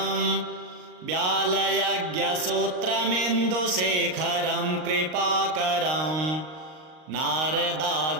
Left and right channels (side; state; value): left; late; 38 ms